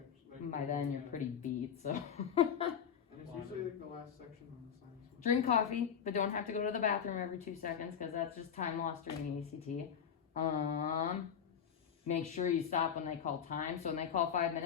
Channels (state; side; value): quieter; right; 7.8 dB